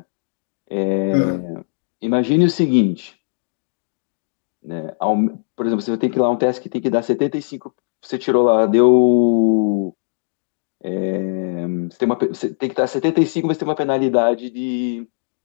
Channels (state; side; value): silent; right; digital silence